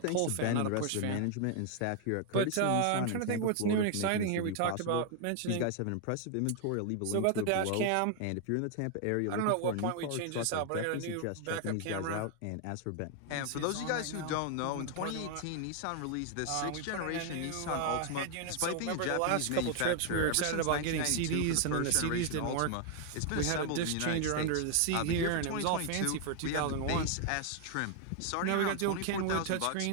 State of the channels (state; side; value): different; both; correlation 0.00